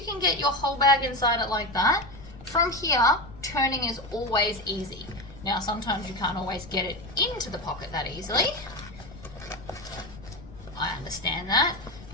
can get your whole bag inside it like that, from here, turning is always easy. Now, sometimes you can't always get it into the pocket that easily. I understand that,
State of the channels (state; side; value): noise; left; rumble, 17 dB below the sound